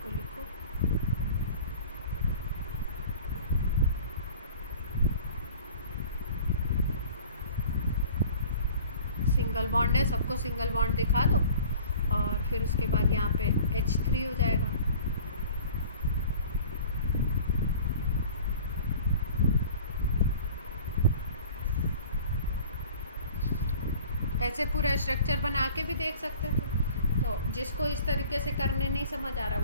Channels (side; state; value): both; inverted; correlation -0.46